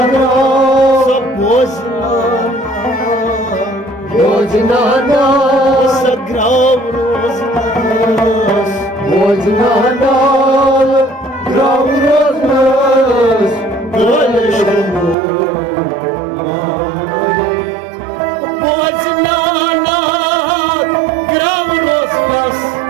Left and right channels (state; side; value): drops out; left; at 15.2 s